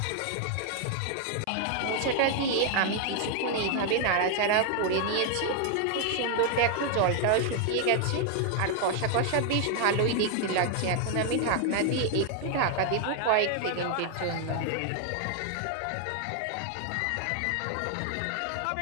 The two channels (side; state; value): both; different; correlation 0.00